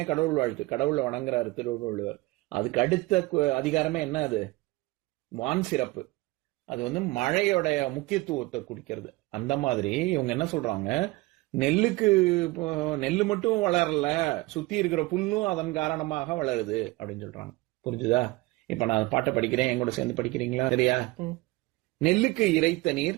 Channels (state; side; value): quieter; left; 21.2 dB